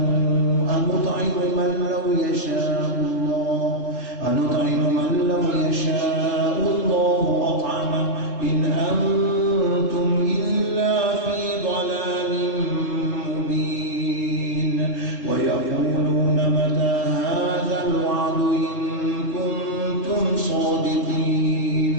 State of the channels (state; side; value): late; right; 3.8 ms